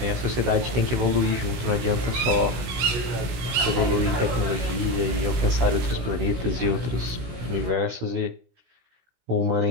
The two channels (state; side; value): late; left; 17 ms